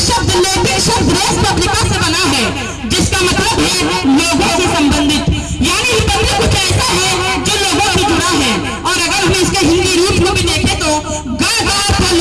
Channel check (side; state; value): both; identical; correlation 1.00